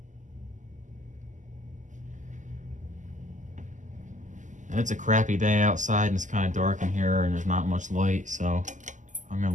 And it's a crappy day outside and it's kind of dark in here and there's not much light, so I'm gonna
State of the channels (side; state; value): left; late; 0.36 ms